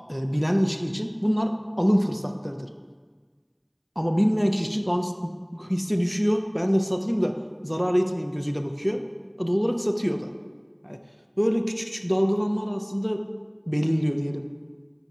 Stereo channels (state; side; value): identical; both; correlation 1.00